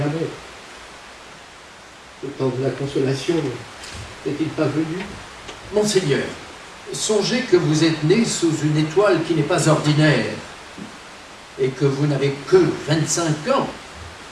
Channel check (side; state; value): both; identical; correlation 1.00